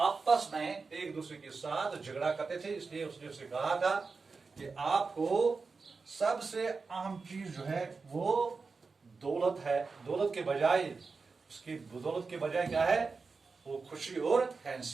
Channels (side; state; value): left; quieter; 4.5 dB